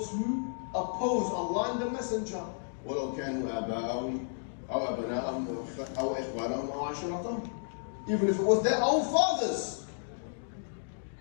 who oppose Allah and the Messenger. ولو كانوا آباءهم أو أبناءهم أو إخوانهم أو عشيرتهم. Even if it was their own fathers.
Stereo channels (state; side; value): silent; right; digital silence